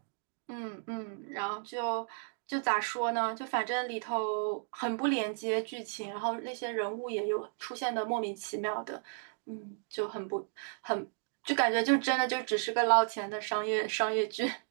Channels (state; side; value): silent; left; 55 dB below the other